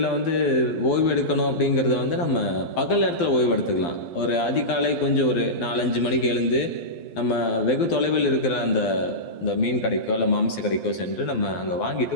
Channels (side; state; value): right; late; 12 ms